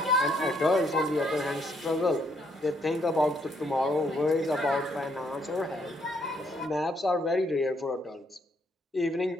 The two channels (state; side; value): normal; both; correlation 0.71